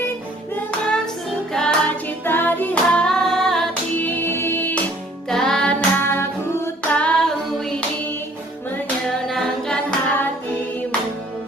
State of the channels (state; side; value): normal; both; correlation 0.57